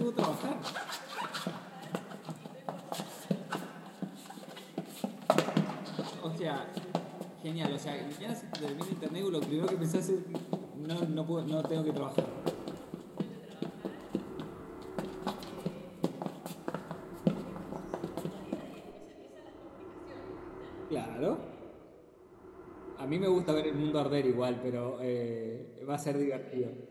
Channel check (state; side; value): identical; both; correlation 1.00